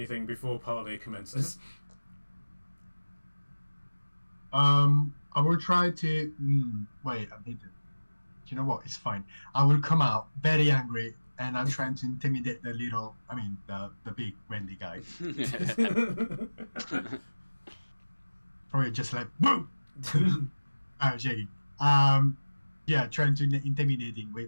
before parley commences? I will try to. Wait, I need to. Do you know what? It's fine. I will come out very angry, and I'm trying to intimidate the big Wendy guy. Probably just like boom. I'm shaking. Yeah, trying to intimidating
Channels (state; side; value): inverted; both; correlation -1.00